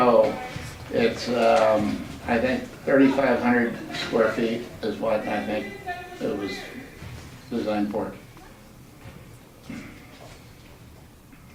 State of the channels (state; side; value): identical; both; correlation 1.00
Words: it's, I think 3,500 square feet is what I think it was designed for.